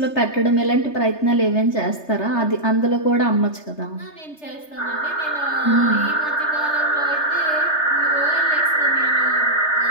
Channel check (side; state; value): right; late; 3.3 ms